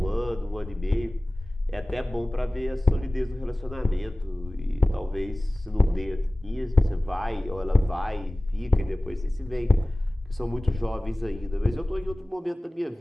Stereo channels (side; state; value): both; normal; correlation 0.98